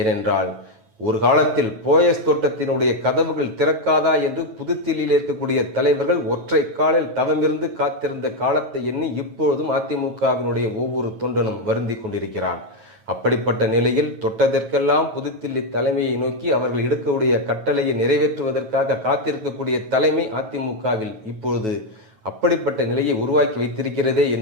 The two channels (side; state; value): left; late; 9.2 ms